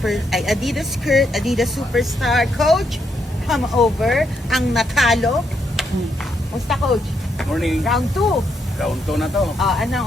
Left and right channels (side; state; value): both; normal; correlation 0.78